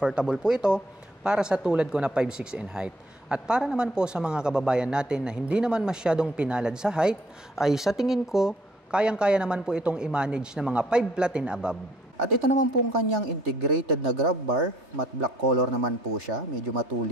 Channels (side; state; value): both; normal; correlation 0.63